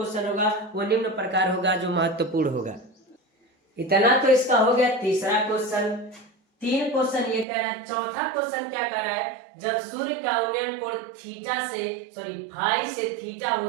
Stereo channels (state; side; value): drops out; left; at 7.5 s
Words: होगा वो निम्न प्रकार होगा, जो महत्वपूर्ण होगा। इतना तो इसका हो गया तीसरा क्वेश्चन। 3 क्वेश्चन ये कह रहा है। चौथा क्वेश्चन क्या कह रहा है, जब सूर्य का उन्नयन कोण फाई से थीटा